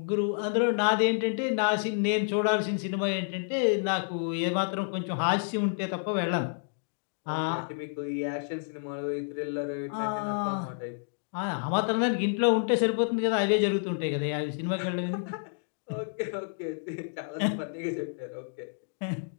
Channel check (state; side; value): silent; right; digital silence